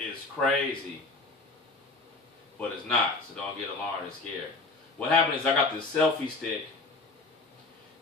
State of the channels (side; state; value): right; quieter; 3.5 dB